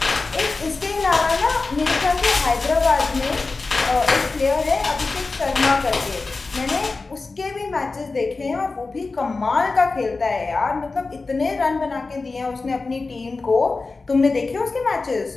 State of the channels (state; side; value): quieter; right; 3.8 dB